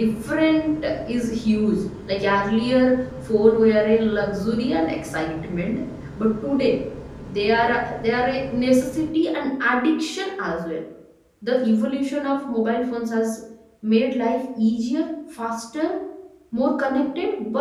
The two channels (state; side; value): identical; both; correlation 1.00